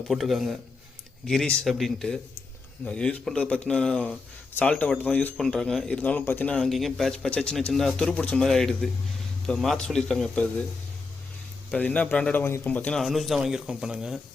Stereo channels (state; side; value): quieter; right; 4.1 dB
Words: போட்டிருக்காங்க, கிரீஸ் அப்படின்ட்டு. யூஸ் பண்ணுறது பார்த்தீங்கன்னா சால்ட்டை வாட்டர் தான் யூஸ் பண்ணுறாங்க. இருந்தாலும் பார்த்தீங்கன்னா அங்கேயும் பேட்ச் சின்ன சின்ன துரு பிடிச்ச மாதிரி ஆகிடுது. இப்போ மாற்ற சொல்லியிருக்காங்க. இப்போ அது என்ன பிராண்டடாக வாங்கியிருக்கோம் பார்த்தீங்கன்னா அனுஜ் தான் வாங்கியிருக்கோம். இப்போ நாங்கள்